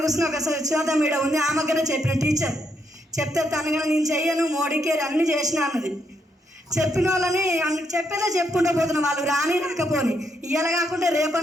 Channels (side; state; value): both; normal; correlation 0.77